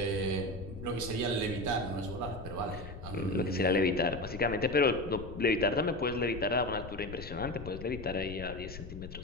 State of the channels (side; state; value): left; noise; rumble, 11 dB below the sound